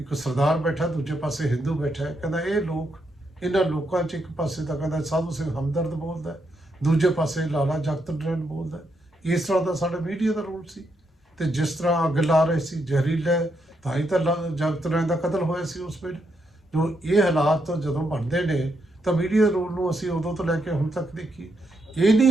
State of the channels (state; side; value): normal; both; correlation 0.80